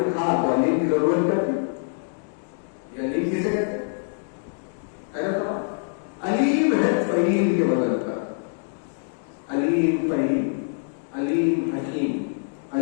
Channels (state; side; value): silent; right; digital silence